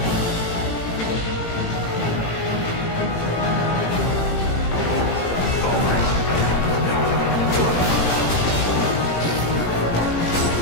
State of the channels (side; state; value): right; late; 18 ms